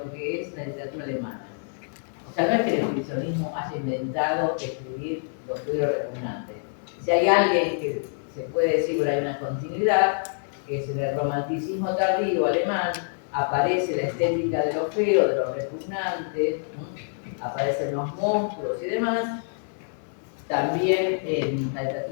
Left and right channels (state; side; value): silent; right; digital silence